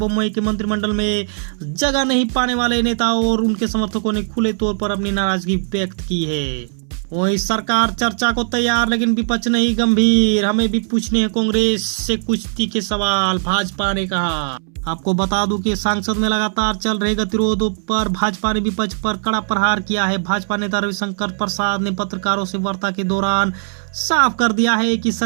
के मंत्रिमंडल में जगह नहीं पाने वाले नेताओं और उनके समर्थकों ने खुले तौर पर अपनी नाराजगी व्यक्त की है। वही सरकार चर्चा को तैयार लेकिन विपक्ष नहीं गंभीर, हमें भी पूछने हैं कांग्रेस से कुछ तीखे सवाल, भाजपा ने कहा। आपको बता दूं कि संसद में लगातार चल रहे गतिरोधों पर भाजपा ने विपक्ष पर कड़ा प्रहार किया है। भाजपा नेता रविशंकर प्रसाद ने पत्रकारों से वार्ता के दौरान साफ कर दिया है कि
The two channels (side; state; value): left; silent; 65 dB below the other